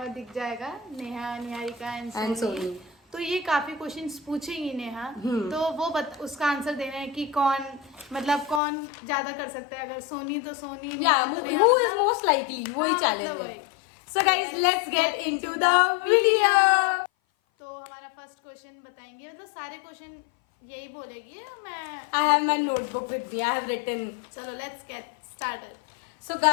जाएगा, नेहा, निहारिका एंड सोनी। तो ये काफी क्वेश्चंस पूछेंगी नेहा, तो वो उसका आंसर देना है कि कौन ज्यादा कर सकता है। अगर सोनी तो Soni, who is most likely, वही चैलेंज है। So guys, let's get into the video. तो हमारा फर्स्ट क्वेश्चन बताएंगे, मतलब सारे क्वेश्चन यही बोलेगी। I have my notebook with me. I have written. चलो let's get started. So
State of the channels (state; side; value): drops out; right; at 8.6 s